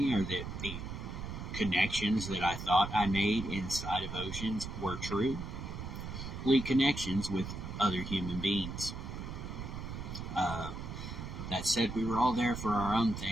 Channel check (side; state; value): right; noise; rumble, 7 dB below the sound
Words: or that the connections that I thought I made inside of Oceans were true. Connections with other human beings. That said, we were all there for our own